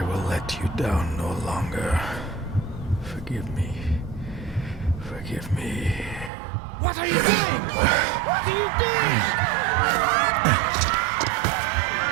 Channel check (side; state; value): left; drops out; at 6.3 s